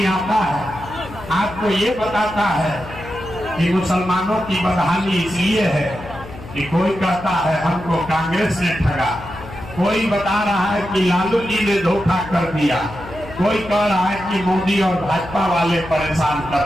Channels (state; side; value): noise; left; hum, 15 dB below the sound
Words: आता है आपको ये बताता है कि मुसलमानों की बदहाली इसलिए है कि कोई कहता है हमको कांग्रेस ने ठगा, कोई बता रहा है कि लालू जी ने धोखा कर दिया, कोई कह रहा है कि मोदी और भाजपा वाले परेशान